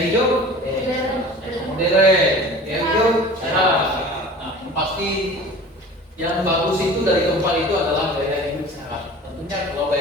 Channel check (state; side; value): normal; both; correlation 0.41